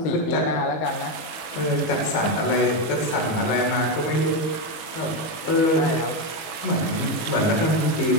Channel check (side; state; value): right; late; 18 ms